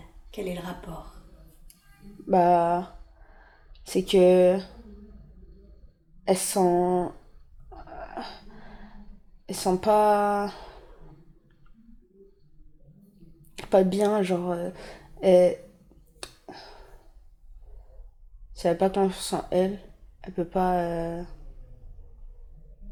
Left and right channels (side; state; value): both; identical; correlation 1.00